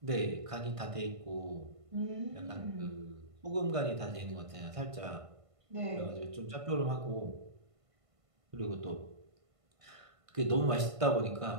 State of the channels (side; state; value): left; late; 1.5 ms